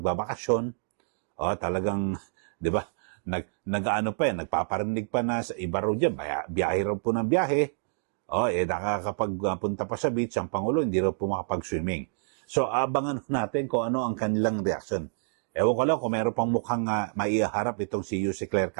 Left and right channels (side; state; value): left; silent; digital silence